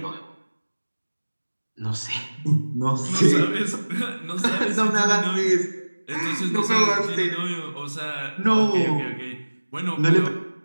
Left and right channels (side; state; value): both; inverted; correlation -1.00